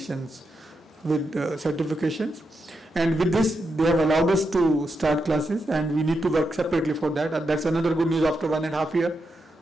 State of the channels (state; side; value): normal; both; correlation 0.85